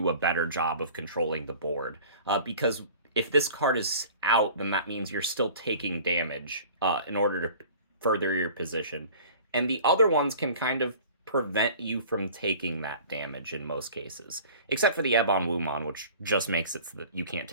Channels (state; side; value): inverted; both; correlation -0.44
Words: a better job of controlling the board. Because if this card is out, then that means you're still taking damage in order to further your position. And the other ones can kind of prevent you from taking that damage in most cases. Except for the Ebon Wumon, which just makes it so that you can't